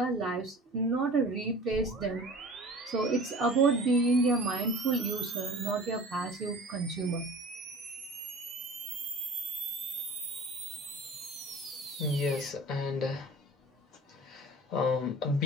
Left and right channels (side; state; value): both; normal; correlation 0.41